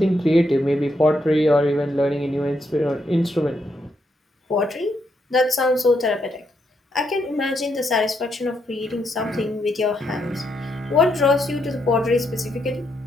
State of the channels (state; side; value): normal; both; correlation 0.79